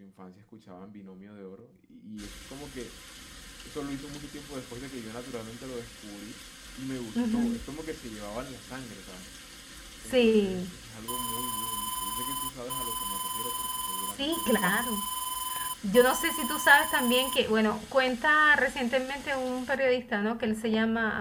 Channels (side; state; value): both; identical; correlation 1.00